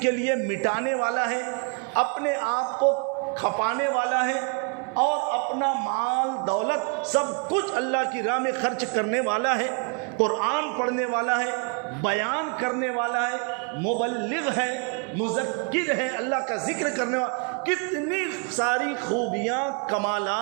کے لیے مٹانے والا ہے، اپنے آپ کو کھپانے والا ہے، اور اپنا مال دولت سب کچھ اللہ کی راہ میں خرچ کرنے والا ہے، قرآن پڑھنے والا ہے، بیان کرنے والا ہے، مبلغ ہے، مذکر ہے، اللہ کا ذکر کرنے والا، کتنی ساری خوبیاں،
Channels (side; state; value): left; quieter; 37.8 dB